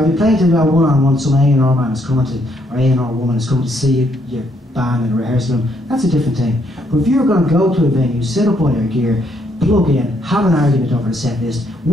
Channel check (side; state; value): both; normal; correlation 0.72